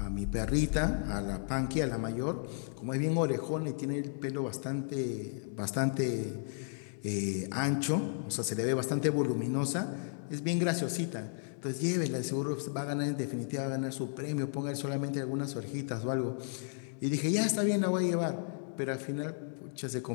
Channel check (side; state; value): right; silent; digital silence